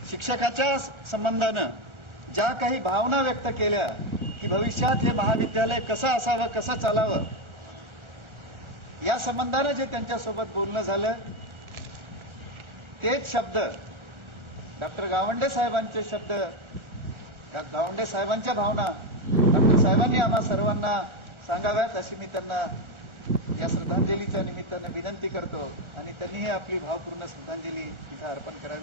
शिक्षकाच्या संबंधानं ज्या काही भावना व्यक्त केल्या की भविष्यात हे महाविद्यालय कसं असावं, कसं चालावं, या संबंधानं जे त्यांच्यासोबत बोलणं झालं तेच शब्द डॉक्टर गावंडे साहेबांचे शब्द, गावंडे साहेबांच्या भावना डॉक्टर साहेबांनी आम्हा सर्वांना सांगाव्यात अशी मी त्यांना या श्रद्धांजलीच्या निमित्तानं विनंती करतो आणि त्यांनीही आपली भावपूर्ण श्रद्धांजली तिथे अर्पण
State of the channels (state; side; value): late; left; 1.4 ms